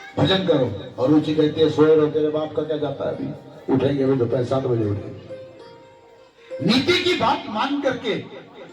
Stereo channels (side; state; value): both; identical; correlation 1.00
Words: भजन करो, और रुचि कहती है सोए रहो, तेरे बाप का क्या जाता है, अभी उठेंगे अभी दोपहर 7 बजे उठेंगे। नीति की बात मान करके